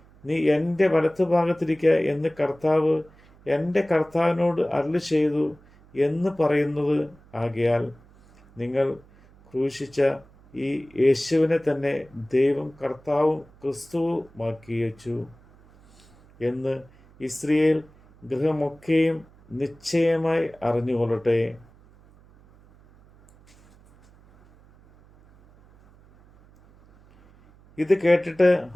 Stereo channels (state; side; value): noise; right; hum, 27 dB below the sound